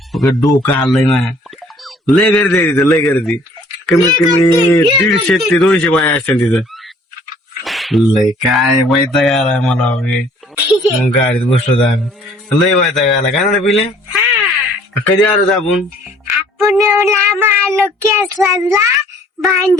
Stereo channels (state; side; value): normal; both; correlation 0.57